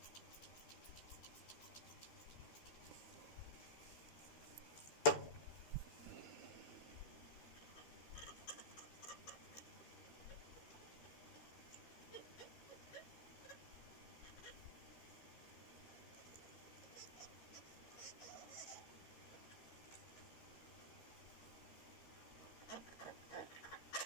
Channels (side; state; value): right; late; 13 ms